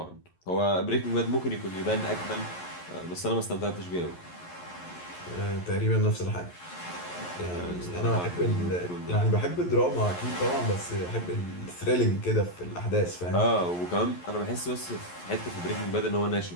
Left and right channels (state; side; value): late; right; 11 ms